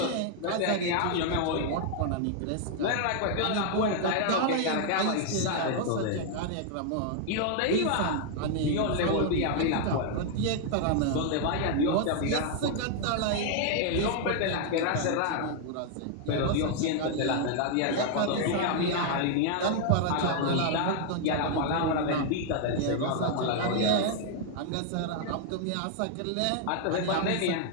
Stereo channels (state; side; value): different; both; correlation 0.00